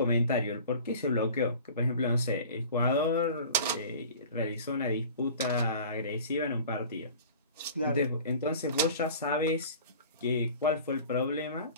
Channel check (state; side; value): inverted; both; correlation -0.42